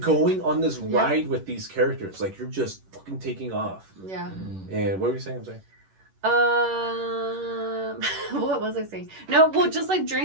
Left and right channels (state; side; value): late; left; 11 ms